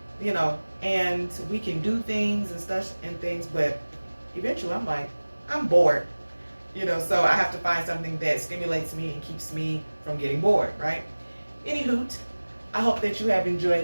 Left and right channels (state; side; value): inverted; both; correlation -1.00